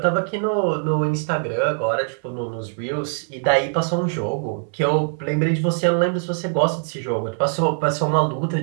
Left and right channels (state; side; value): silent; left; 63 dB below the other